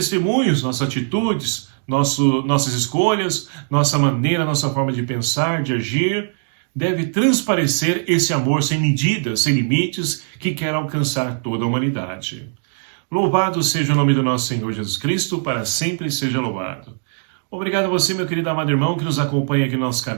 nossas atitudes, nossas escolhas, nossa maneira, nossa forma de pensar, de agir, deve transparecer esse amor sem medidas, sem limites, que quer alcançar toda a humanidade. Louvado seja o nome do nosso Senhor Jesus Cristo, para sempre seja louvado. Obrigado a você, meu querido amado irmão, que nos acompanha aqui no nosso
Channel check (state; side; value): silent; left; digital silence